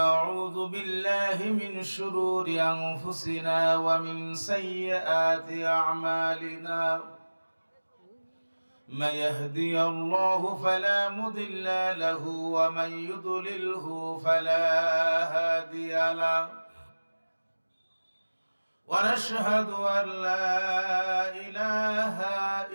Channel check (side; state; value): both; inverted; correlation -1.00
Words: بالله من شرور أنفسنا ومن سيئات أعمالنا من يهدي الله فلا مضل له ومن يضلله فلا هادي له ونشهد أن لا إله